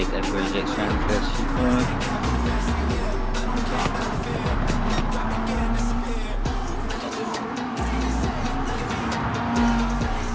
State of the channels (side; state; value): both; identical; correlation 1.00